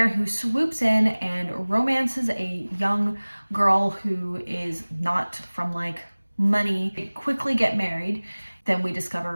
who swoops in and romances a young girl who is not from like money. They quickly get married. Then we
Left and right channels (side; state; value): both; inverted; correlation -1.00